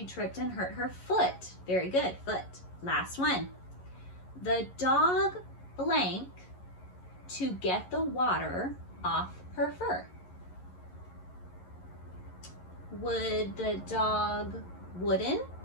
tripped and hurt her foot. Very good. Foot. Last one. The dog blank to get the water off her fur. Would the dog wooden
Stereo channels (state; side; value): late; right; 11 ms